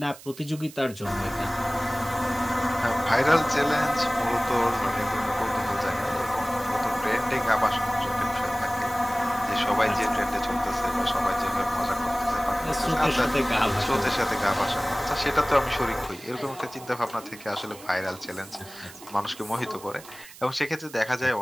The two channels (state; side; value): noise; right; hiss, 18 dB below the sound